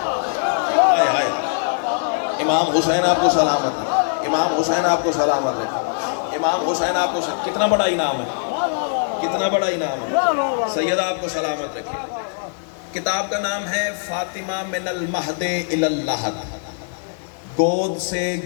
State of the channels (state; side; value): silent; right; 65 dB below the other